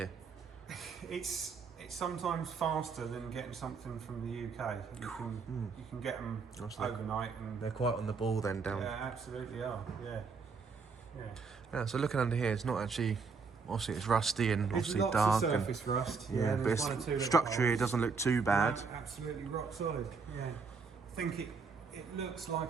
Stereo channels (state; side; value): quieter; left; 5.0 dB